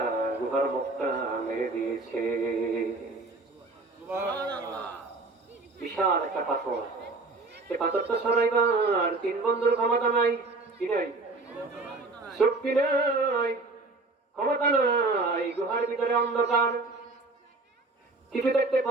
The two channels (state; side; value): quieter; left; 3.4 dB